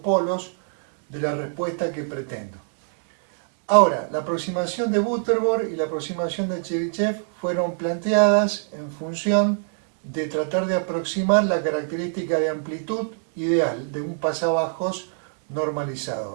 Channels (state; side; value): silent; left; digital silence